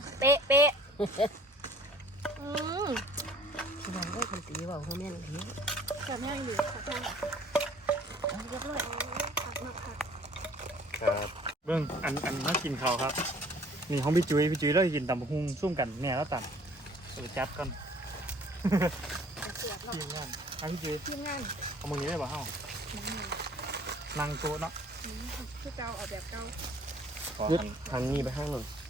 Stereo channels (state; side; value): normal; both; correlation 0.53